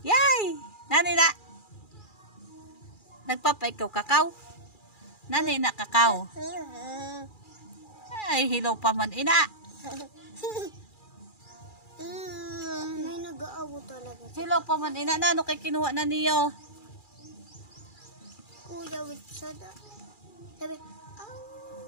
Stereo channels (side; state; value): right; late; 2.4 ms